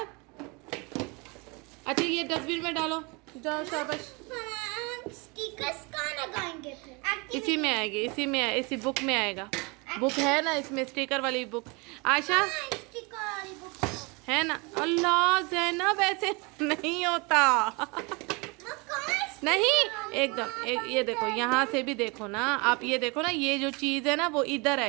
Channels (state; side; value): quieter; left; 28.5 dB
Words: अच्छा ये डस्टबिन में डालो, जाओ शाबाश। स्टिकर्स कहाँ लगाएंगे फिर? इसी में आएगी, इसी बुक में आएगा। बुक है ना इसमें, स्टिकर वाली बुक। आशा स्टिकर वाली बुक है ना? अल्लाह जैनब ऐसे नहीं होता। नहीं एकदम ये देखो, यहाँ से भी देखो ना आप, ये देखो ना, ये जो चीज़ है ना वो इधर